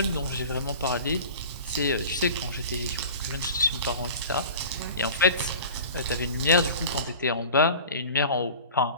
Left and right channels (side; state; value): both; inverted; correlation -0.39